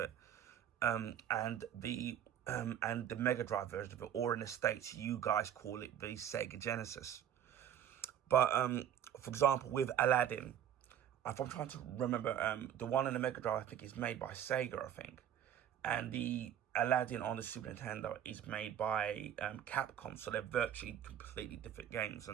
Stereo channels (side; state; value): left; quieter; 10.0 dB